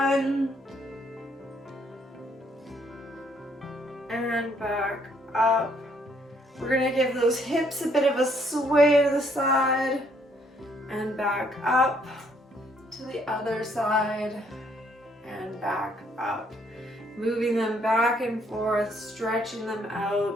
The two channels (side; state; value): both; normal; correlation 0.68